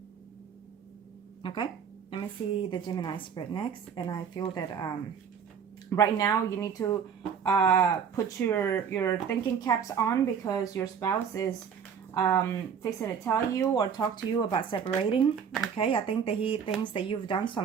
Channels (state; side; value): quieter; left; 7.2 dB